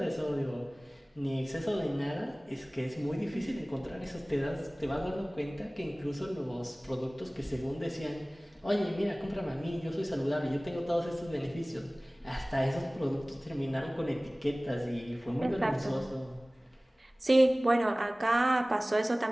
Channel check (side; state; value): both; normal; correlation 0.98